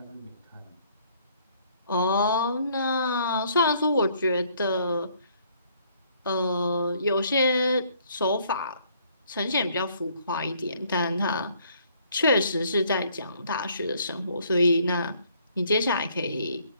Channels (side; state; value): both; inverted; correlation -0.64